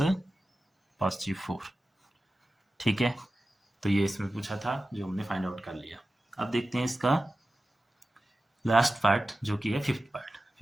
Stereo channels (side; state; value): both; normal; correlation 0.94